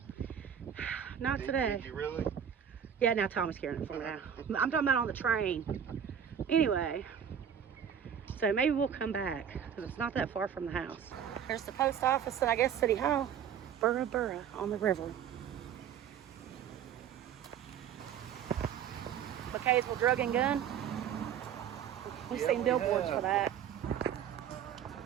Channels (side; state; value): left; quieter; 8.6 dB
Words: not today. Did you really? Yeah, now Tommy's carrying it for me now. I'm talking about on the train. Anyway, so maybe we'll come back because it's not that far from the house. There's the post office and I guess City Hall. Burra on the river. McCaysville Drug and Gun. We've seen billboards for that.